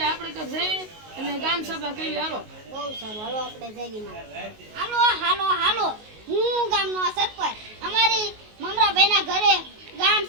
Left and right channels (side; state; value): left; late; 19 ms